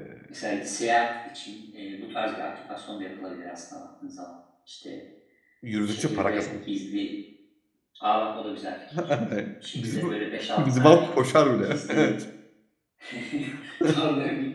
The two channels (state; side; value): identical; both; correlation 1.00